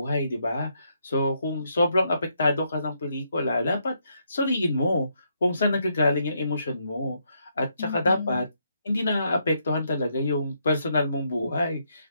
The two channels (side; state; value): both; inverted; correlation -0.76